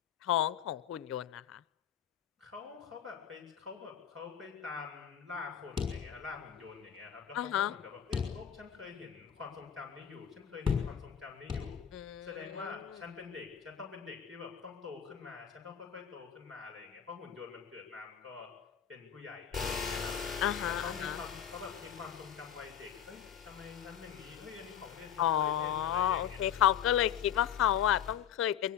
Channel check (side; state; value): right; quieter; 9.2 dB